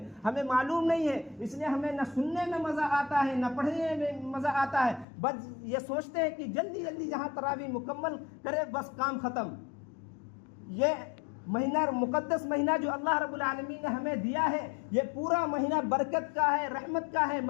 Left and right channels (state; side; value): drops out; right; at 5.1 s